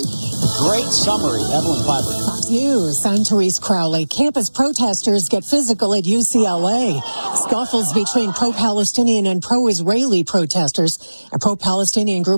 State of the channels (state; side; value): inverted; both; correlation -1.00